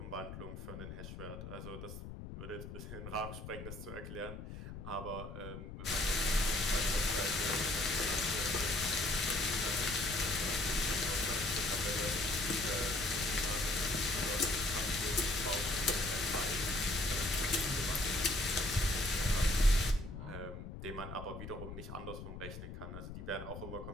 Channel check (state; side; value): noise; left; rumble, 10 dB below the sound